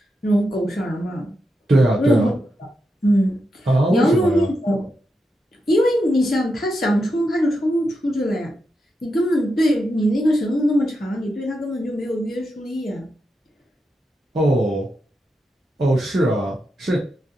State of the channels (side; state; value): both; normal; correlation 0.86